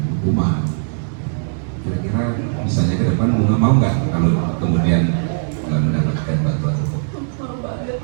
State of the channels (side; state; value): left; silent; 66 dB below the other